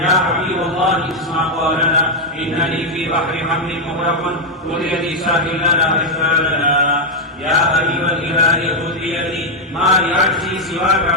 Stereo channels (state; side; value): normal; both; correlation 0.00